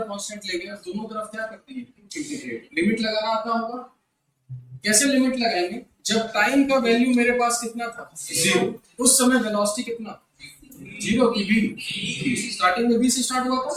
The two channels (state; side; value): identical; both; correlation 1.00